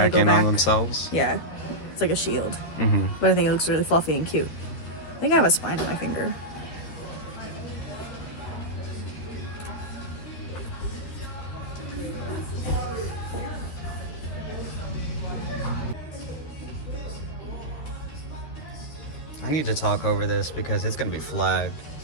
in on themselves? Yeah, it's like a shield. Mm-hmm. But I think it looks really fluffy and cute. I think I have a spine in my finger. I need to talk over this because it's going to be flagged.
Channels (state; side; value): late; right; 13 ms